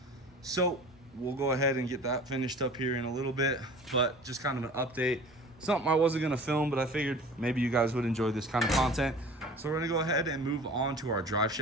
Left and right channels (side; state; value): both; normal; correlation 0.43